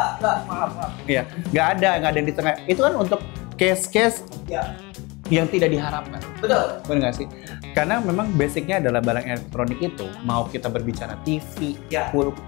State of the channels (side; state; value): right; quieter; 25.3 dB